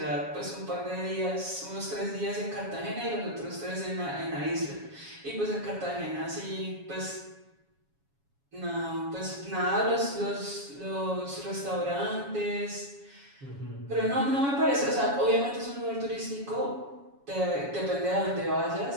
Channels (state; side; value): late; left; 7.2 ms